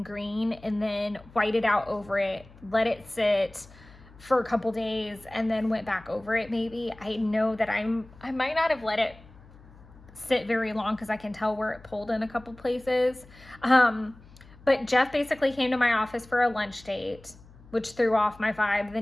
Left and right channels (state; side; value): noise; left; hum, 23 dB below the sound